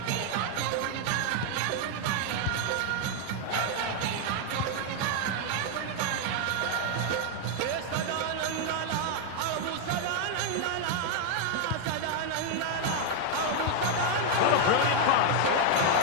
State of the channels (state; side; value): different; both; correlation 0.00